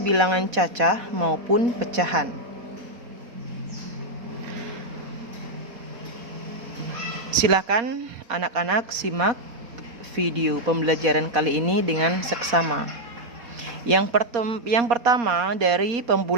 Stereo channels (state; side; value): late; left; 4.1 ms